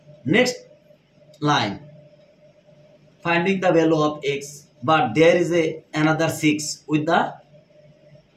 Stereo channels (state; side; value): identical; both; correlation 1.00